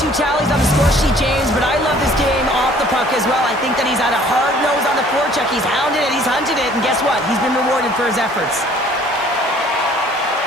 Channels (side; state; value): both; normal; correlation 0.55